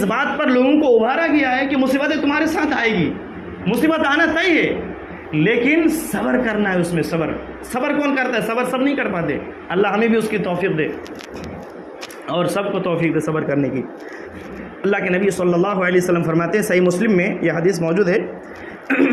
بات پر لوگوں کو ابھارا گیا ہے کہ مصیبتیں تمہارے ساتھ آئے گی، مصیبت آنا طے ہے، لیکن صبر کرنا ہے. اس میں صبر کون کرتا ہے؟ صبر سب نہیں کر پاتے. اللہ ہمیں بھی اس کی توفیق دے اور سب کو توفیق دے صبر کرنے کی. اللہ کے نبی صلی اللہ علیہ وسلم فرماتے ہیں، صحیح مسلم میں یہ حدیث موجود ہے،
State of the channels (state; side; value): identical; both; correlation 1.00